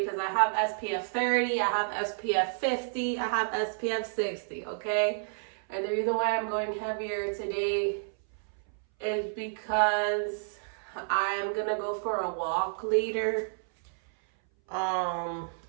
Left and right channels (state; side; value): silent; left; 58 dB below the other